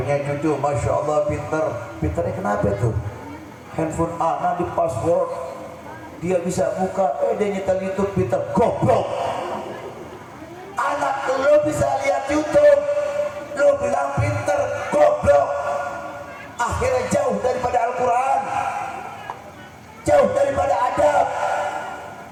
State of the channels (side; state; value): both; identical; correlation 1.00